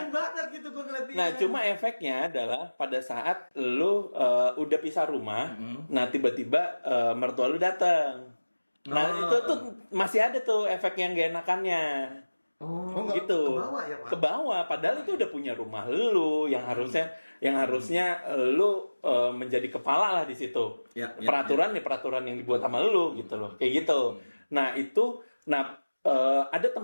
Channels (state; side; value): inverted; both; correlation -1.00